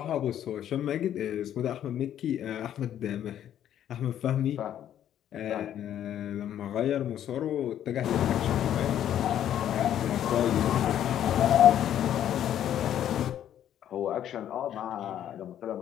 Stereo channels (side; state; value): right; quieter; 10.7 dB